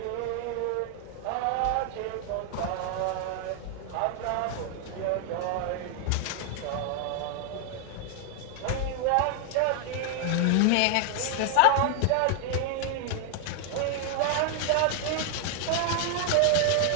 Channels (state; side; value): different; both; correlation 0.00